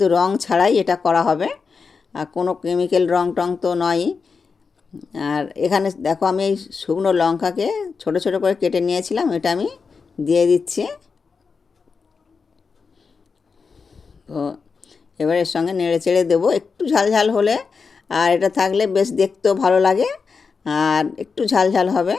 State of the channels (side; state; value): right; quieter; 5.1 dB